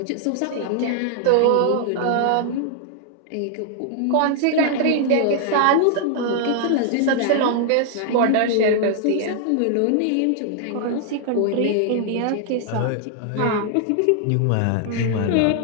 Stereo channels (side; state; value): both; different; correlation 0.00